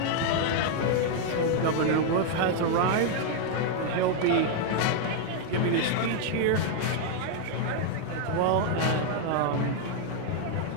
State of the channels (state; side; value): different; both; correlation 0.00